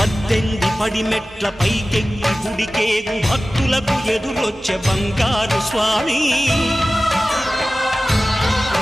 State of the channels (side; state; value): both; normal; correlation 0.96